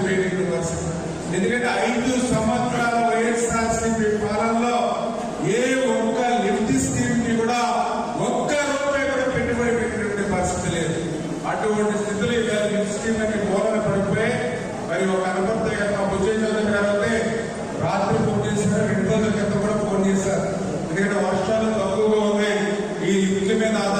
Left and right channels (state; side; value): identical; both; correlation 1.00